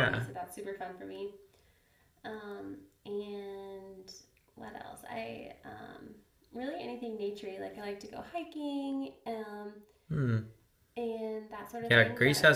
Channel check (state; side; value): identical; both; correlation 1.00